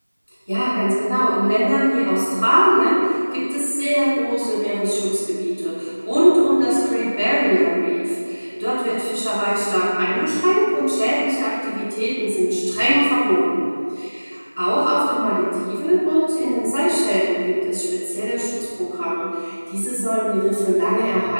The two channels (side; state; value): both; inverted; correlation -1.00